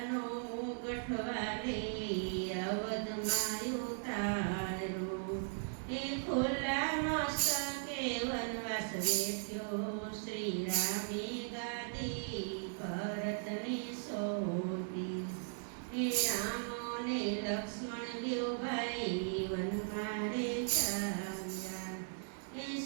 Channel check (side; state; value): left; silent; digital silence